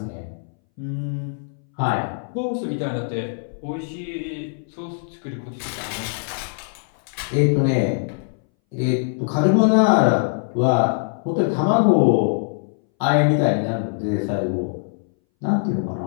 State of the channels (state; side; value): silent; right; 62 dB below the other